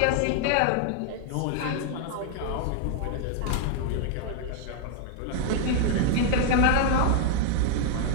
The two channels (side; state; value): both; different; correlation 0.00